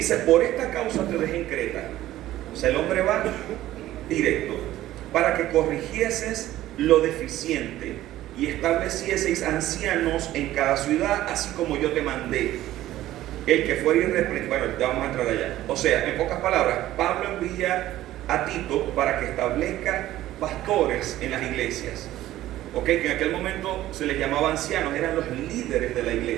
por esta causa te dejé en Creta. O sea, el hombre va directo, para que corrigieses lo deficiente y establecieseis ancianos en cada ciudad, así como yo te mandé. El que fuera irreprensible. Bueno, ya vamos a entrar allá. O sea, en pocas palabras, Pablo envía a Tito para que establezca pastores en las iglesias. Ok, que en aquel momento se les llamaba ancianos, eran los líderes de la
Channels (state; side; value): quieter; left; 14.5 dB